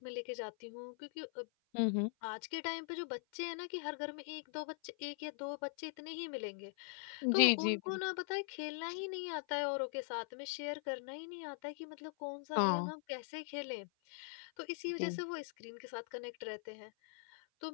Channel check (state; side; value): silent; right; 50 dB below the other